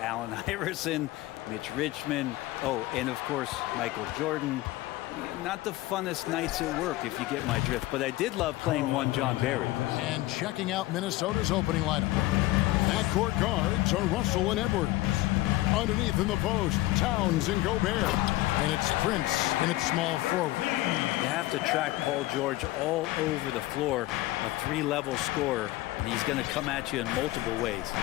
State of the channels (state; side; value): quieter; right; 17.8 dB